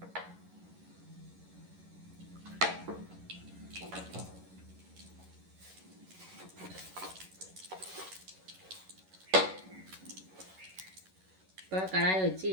இப்போ கடாயை வச்சு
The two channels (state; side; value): late; left; 11 ms